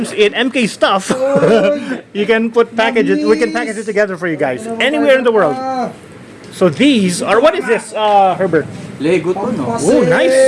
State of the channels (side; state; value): both; identical; correlation 1.00